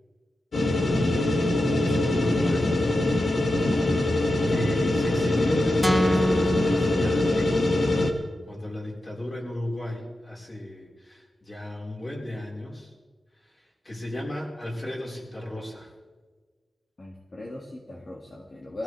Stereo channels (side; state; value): both; normal; correlation 0.91